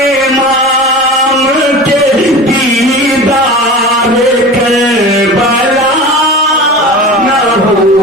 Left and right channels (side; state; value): both; normal; correlation 0.33